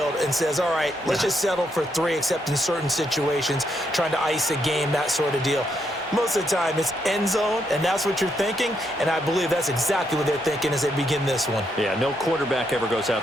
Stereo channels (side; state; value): both; normal; correlation 0.78